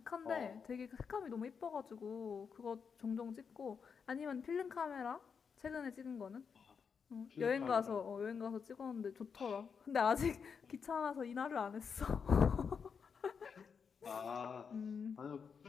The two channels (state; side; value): quieter; right; 6.2 dB